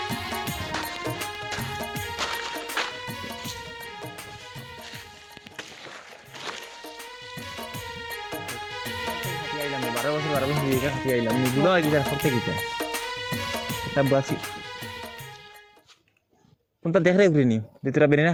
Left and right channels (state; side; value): identical; both; correlation 1.00